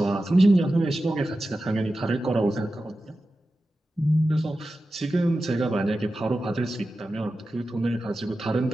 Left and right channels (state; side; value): normal; both; correlation 0.93